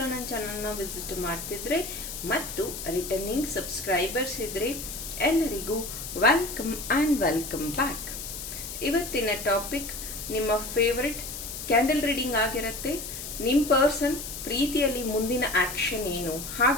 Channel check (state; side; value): noise; left; hiss, 8 dB below the sound